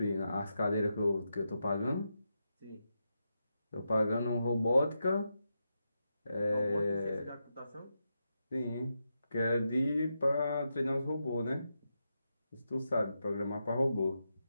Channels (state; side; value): inverted; both; correlation -0.86